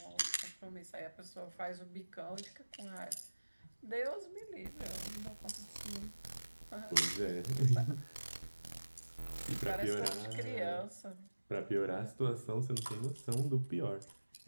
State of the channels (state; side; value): inverted; both; correlation -1.00